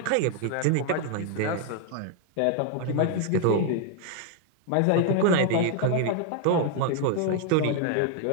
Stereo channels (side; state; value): both; different; correlation 0.00